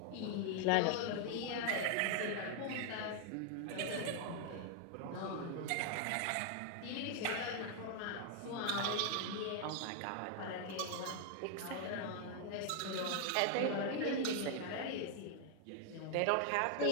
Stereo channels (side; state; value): both; different; correlation 0.00